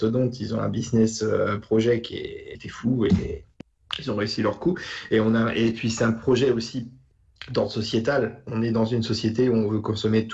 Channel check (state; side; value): identical; both; correlation 1.00